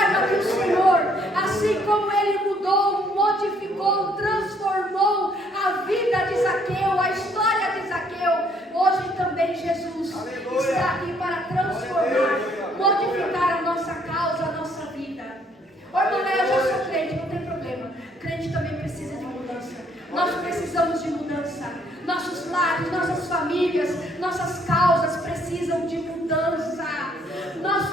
que o Senhor, assim como Ele mudou, modificou, transformou a vida de Zaqueu, a história de Zaqueu, hoje também Jesus está aqui para transformar, modificar a nossa causa, a nossa vida. Ô irmã, eu já sou crente, não tem problema. Crente também precisa de mudança. Nós precisamos de mudança. Nossos lares, nossas famílias, nossas causas precisam de mudança. Nós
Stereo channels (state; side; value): normal; both; correlation 0.66